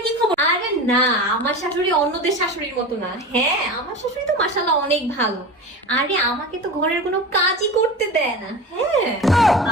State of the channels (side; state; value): both; normal; correlation 0.30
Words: কি খবর? আরে না, আমার শাশুড়ি অন্যদের শাশুড়ির মতো না। হ্যাঁ, আমার শাশুড়ি তো মাশাআল্লাহ অনেক ভালো। আরে আমাকে তো ঘরের কোনো কাজই করতে দেয় না। হ্যাঁ,